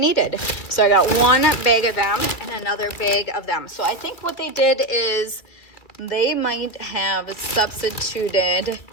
So I got 1 bag of them and another bag of them. So I think what they did is they might have substituted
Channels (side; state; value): right; late; 2.4 ms